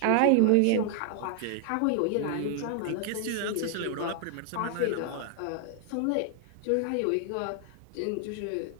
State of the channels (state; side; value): different; both; correlation 0.00